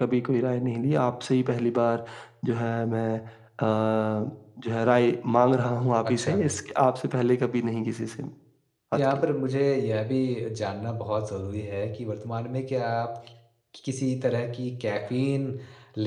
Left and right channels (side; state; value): both; identical; correlation 1.00